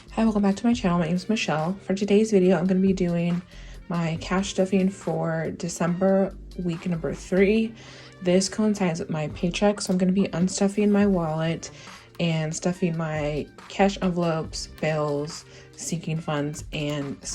Hi, welcome back to my channel. My name is Michelle. For today's video, I'm going to be doing my cash stuffing for December week number 3. This coincides with my paycheck, so I'm going to be unstuffing my wallet and stuffing my cash envelopes, bills, sinking funds, and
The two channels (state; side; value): identical; both; correlation 1.00